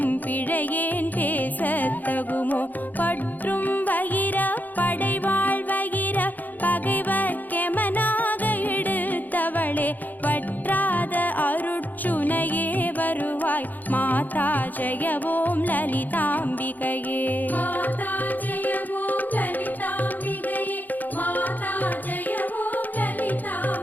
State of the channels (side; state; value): right; late; 0.084 ms